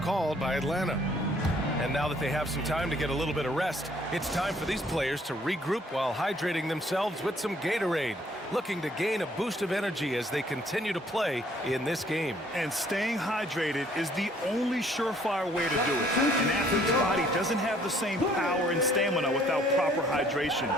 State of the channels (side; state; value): both; normal; correlation 0.62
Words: called by Atlanta. And now that they have some time to get a little bit of rest, it's time for these players to regroup while hydrating themselves with some Gatorade, looking to gain a boost of energy as they continue to play in this game. And staying hydrated is the only surefire way to do it. An athlete's body doesn't have the same power and stamina without proper hydration.